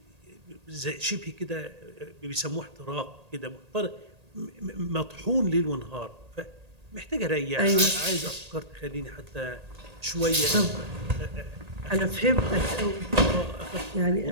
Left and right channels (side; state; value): left; late; 1.8 ms